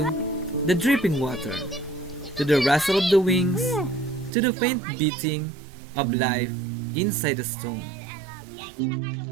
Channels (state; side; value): drops out; left; at 4.3 s